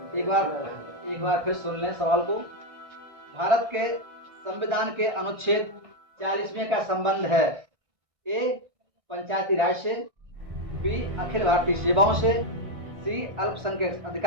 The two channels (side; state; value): left; late; 1.6 ms